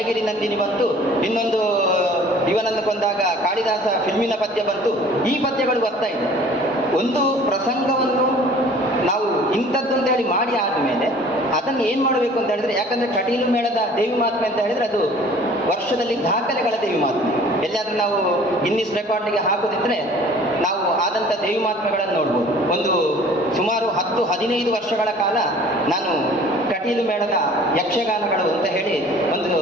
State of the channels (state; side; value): normal; both; correlation 0.49